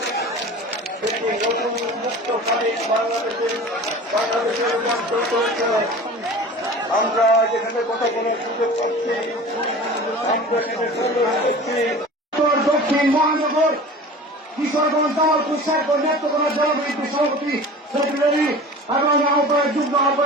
একটি নতুন মুক্ত স্বাধীন বাংলাদেশের রূপান্তর করেছে। আমরা যেখানে কথা বলার সুযোগ পাচ্ছি, আমরা দক্ষিণ মহানগর কিশোরগঞ্জ দল কুশার নেতৃত্ব জনবিদ্যুৎ সভাপতি সেক্রেটারি এবং আহ্বায়ক যুগ্ম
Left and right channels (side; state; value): both; normal; correlation 0.38